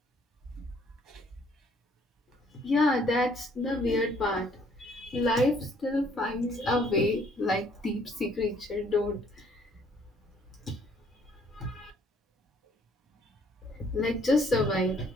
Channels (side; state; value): both; normal; correlation 0.63